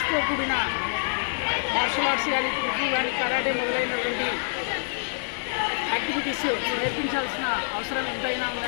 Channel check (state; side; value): silent; right; digital silence